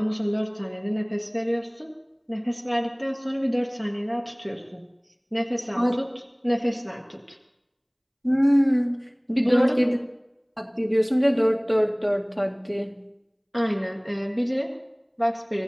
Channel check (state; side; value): identical; both; correlation 1.00